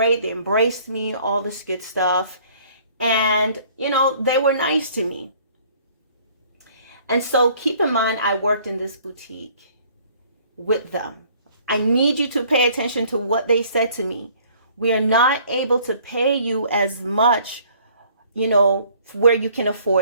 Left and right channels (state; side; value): inverted; both; correlation -0.58